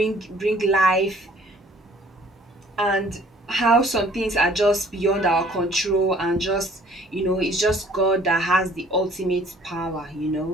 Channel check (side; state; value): both; normal; correlation 0.56